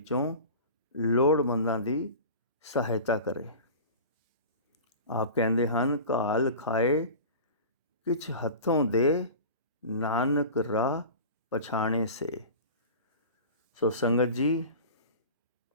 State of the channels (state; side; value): inverted; both; correlation -0.35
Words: ਲੋੜਵੰਦਾਂ ਦੀ ਸਹਾਇਤਾ ਕਰੇ। ਆਪ ਕਹਿੰਦੇ ਹਨ, ਘਾਲ ਖਾਏ ਕਿਛ ਹੱਥੋਂ ਦੇ, ਨਾਨਕ ਰਾਹ ਪਛਾਣੇ ਸੇ। ਸੋ ਸੰਗਤ ਜੀ,